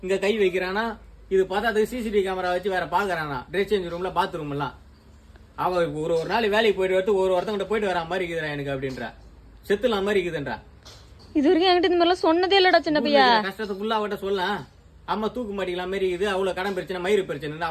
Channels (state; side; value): identical; both; correlation 1.00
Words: இங்க கை வைக்கிறானா இது பார்த்தா அதுக்கு சிசிடிவி கேமரா வச்சு வேற பாக்குறானா ட்ரெஸ் சேஞ்ச் ரூம்ல பாத்ரூம் எல்லாம் அவ ஒரு நாள் வேலைக்கு போயிட்டு வரது ஒருத்தங்கிட்ட போயிட்டு வரா மாதிரி இருக்குதுடா எனக்கு அப்படின்றா செத்துலாம் மாதிரி இருக்குதுன்றா. இது வரைக்கும் என்கிட்ட இந்த மாதிரிலாம் சொன்னதே இல்லடா சின்ன பையா. கஷ்டத்தை ஃபுல்லா அவட்ட சொல்லலாம் அம்மா தூக்கு மாட்டிக்கலாம் மாதிரி இருக்குது அவ்வளவு கடன் பிரச்சனை மயிறு பிரச்சனை